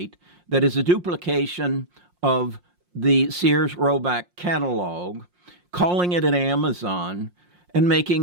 that is a duplication of the Sears Roebuck catalog, calling it an Amazon, and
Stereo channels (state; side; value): late; left; 5.6 ms